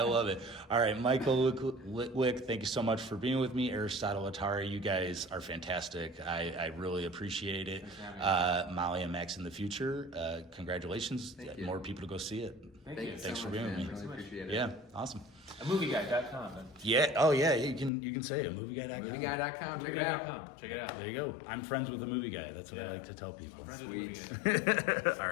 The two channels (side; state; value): right; drops out; at 17.9 s